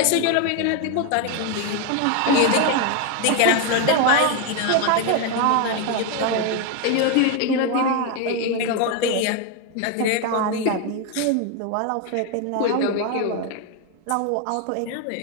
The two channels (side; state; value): both; different; correlation 0.01